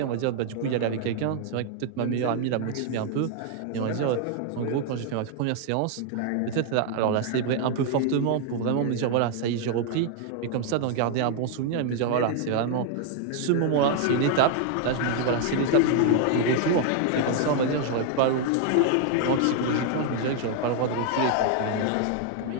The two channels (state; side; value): different; both; correlation 0.00